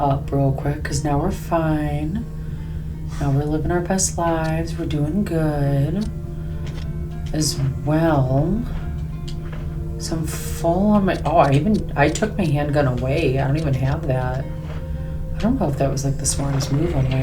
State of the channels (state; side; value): identical; both; correlation 1.00